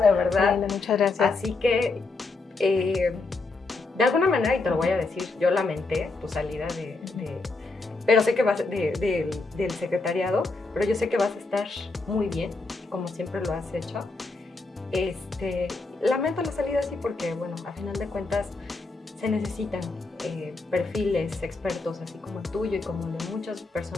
verdad. Linda, muchas gracias. Así que, de alguna manera, y te lo voy a decir, yo lamenté tu salida pero sé que vas del secretariado, pero yo sé que vas a estar muy bien, como siempre lo has hecho. Lamento la salida así porque, bueno, a final de cuentas se necesitan perfiles expertos así como el tuyo y como el de muchas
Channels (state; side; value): quieter; right; 3.6 dB